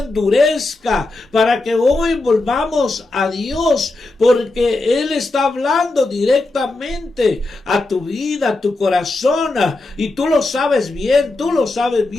para que hoy volvamos a Dios, porque Él está hablando directamente a tu vida, a tu corazón, y tú lo sabes bien.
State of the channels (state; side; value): quieter; right; 3.0 dB